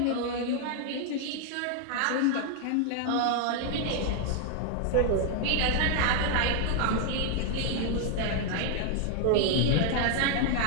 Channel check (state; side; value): different; both; correlation 0.00